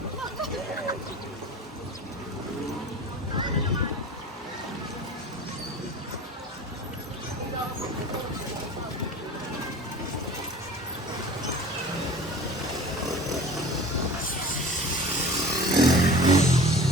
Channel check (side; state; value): both; normal; correlation 0.40